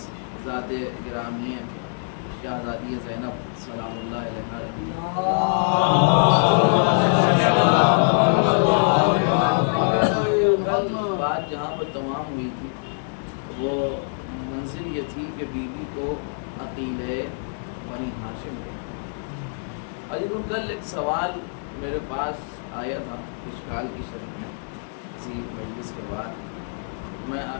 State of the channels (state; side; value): silent; right; digital silence